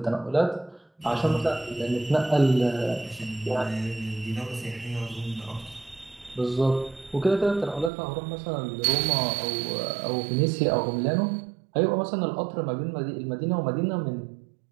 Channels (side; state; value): left; drops out; at 7.9 s